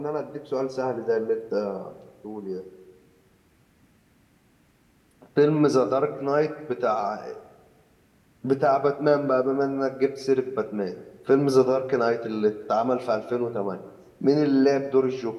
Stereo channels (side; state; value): both; identical; correlation 1.00